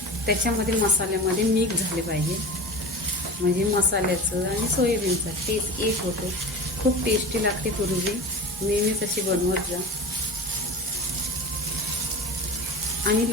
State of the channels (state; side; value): normal; both; correlation 0.32